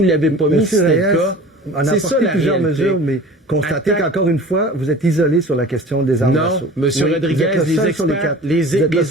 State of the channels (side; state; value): both; normal; correlation 0.41